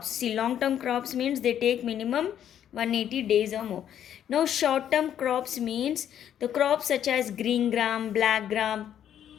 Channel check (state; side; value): quieter; right; 10.0 dB